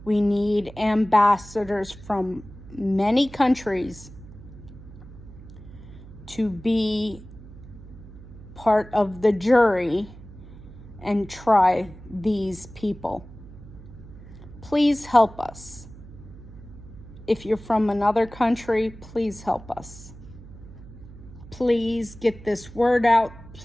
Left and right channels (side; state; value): right; noise; hum, 17 dB below the sound